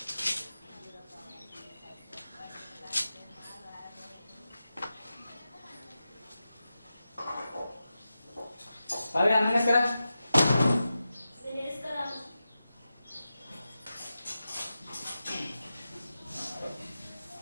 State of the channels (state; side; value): inverted; both; correlation -0.91